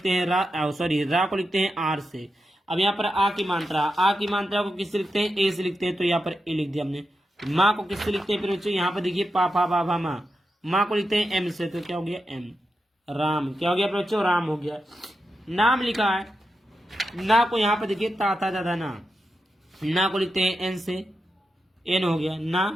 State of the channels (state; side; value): normal; both; correlation 0.88